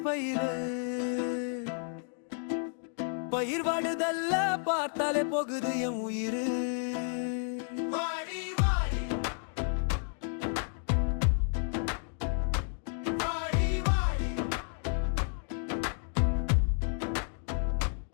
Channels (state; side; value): silent; right; 57 dB below the other